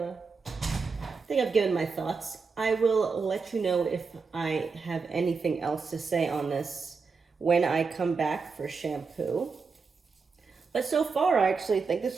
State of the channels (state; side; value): quieter; left; 4.9 dB